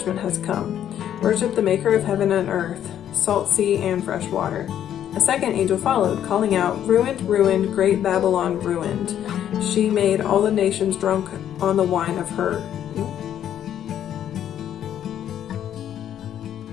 has come. Worship the maker of heaven and earth, salt sea and fresh water." A second angel followed, calling out, "Ruined, ruined, great Babylon ruined. She made all the nations drunk on the wine of her."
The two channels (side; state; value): right; quieter; 10.4 dB